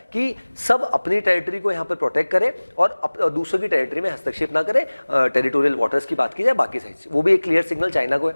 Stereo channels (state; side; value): inverted; both; correlation -1.00